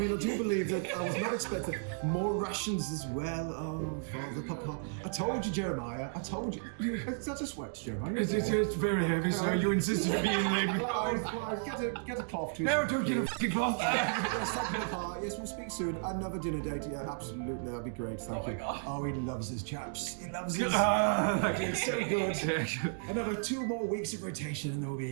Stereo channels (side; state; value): left; silent; digital silence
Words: I do believe that I was not expecting more rations as well. Oh, Father, Papa. I told you, Jeremiah. I told you. Is that a sweat, Jeremiah? It's very heavy, so you insisted to be in there. Get a cloth to No, don't get a fucking cloth. Yes, thank you, Papa. Yes, we'll speak soon. Another dinner date. Yeah, absolutely. That'd be great. Thank you. God. Oh, he loves his chaps. He loves his. It's so good. Another 2 more weeks of rotation, and we'll